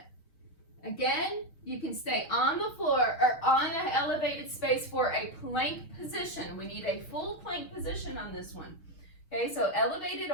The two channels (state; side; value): late; right; 6.2 ms